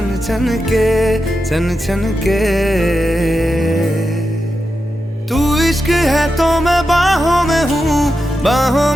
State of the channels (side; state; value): both; normal; correlation 0.89